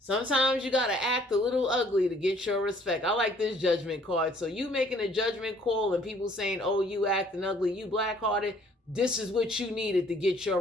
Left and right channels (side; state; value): both; normal; correlation 0.59